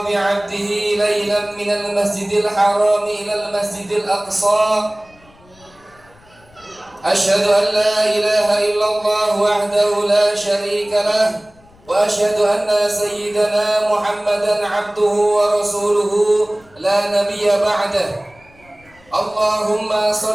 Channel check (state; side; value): noise; left; rumble, 28 dB below the sound